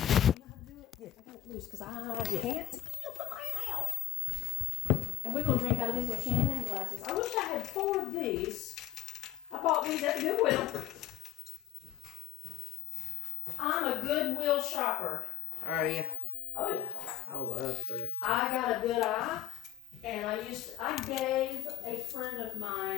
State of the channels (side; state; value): right; quieter; 13.3 dB